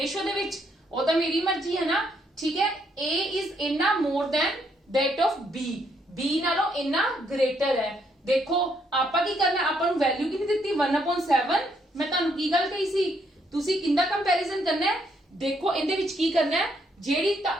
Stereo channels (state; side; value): normal; both; correlation 0.72